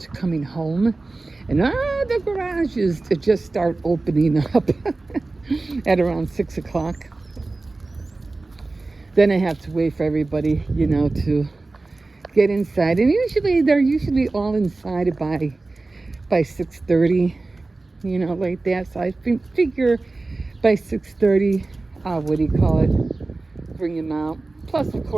coming home. And the garages just start opening up at around 6 o'clock. Then I have to wait for everybody, to get inside. And they're all inside by 6:30, like that. So I figure by 6:30, bring him out. Plus, of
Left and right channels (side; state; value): left; quieter; 3.3 dB